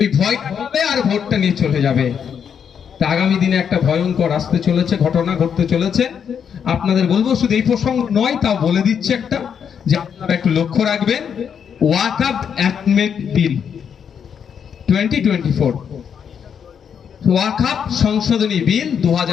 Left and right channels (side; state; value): right; quieter; 7.6 dB